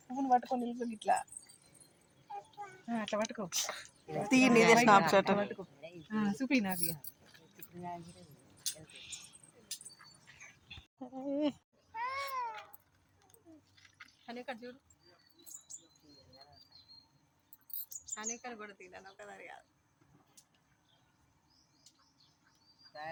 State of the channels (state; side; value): identical; both; correlation 1.00